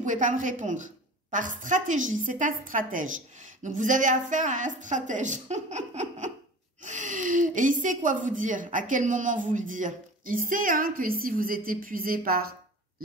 pas me répondre. Par stratégie, c'est un stratège. Donc, vous avez affaire à un stratège. Et il sait quoi vous dire, à quel moment vous le dire. Il sait hein, que si vous êtes épuisé par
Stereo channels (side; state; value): both; normal; correlation 0.39